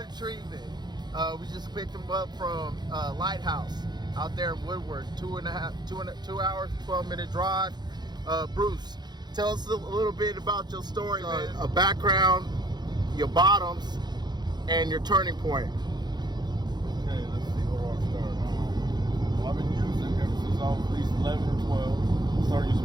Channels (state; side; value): late; left; 0.21 ms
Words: treatment. We just picked him up from Lighthouse out there in Woodward. 2 hours, 12-minute drive. Bruce, tell us a little bit about your story, man. A background, your bottoms, and your turning point. Okay, let's see where I start. Well, I've been using ever since I was at least 11 or 12. I started